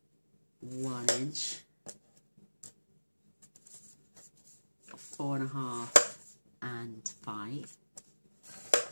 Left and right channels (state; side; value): inverted; both; correlation -1.00